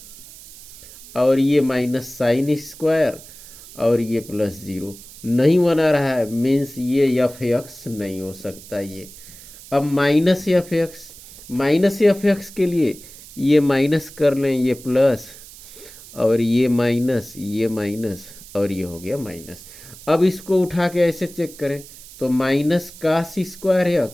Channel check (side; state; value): right; noise; hiss, 18 dB below the sound